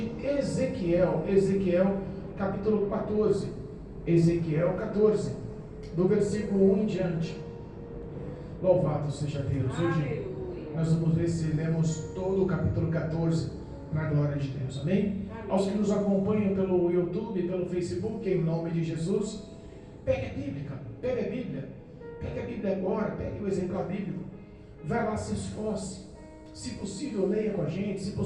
Ezequiel, capítulo 14. Ezequiel 14, do versículo 1 em diante. Louvado seja Deus. Hoje Aleluia. nós vamos ver se lemos todo o capítulo 14 na glória de Deus. Amém? Amém. Aos que nos acompanham pelo YouTube, pelo Facebook, em nome de Jesus, pegue a Bíblia, pegue a Bíblia. Pegue a Bíblia agora, pegue o exemplar bíblico. Vai lá, se esforce. Se possível, leia com a gente. Se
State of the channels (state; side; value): identical; both; correlation 1.00